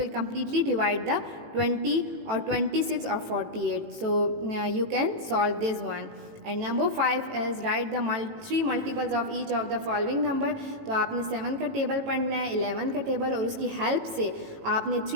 completely divide the 20 or 26 or 48. So you can solve this one. And number 5 is right the 3 multiples of each of the following number. तो आपने 7 का table पढ़ना है, 11 का table, और उसकी help से आपने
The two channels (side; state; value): left; late; 18 ms